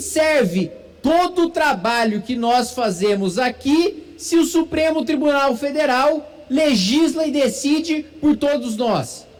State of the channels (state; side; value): identical; both; correlation 1.00